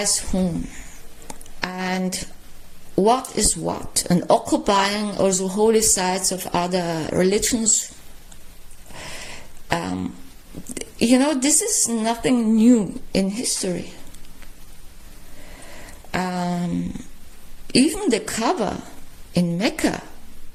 whom? And what is what? And occupying also holy sites of other religions. This is nothing new in history. Even the Kaaba in Mecca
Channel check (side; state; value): both; identical; correlation 1.00